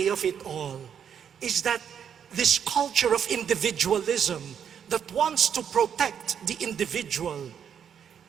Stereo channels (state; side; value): quieter; left; 8.2 dB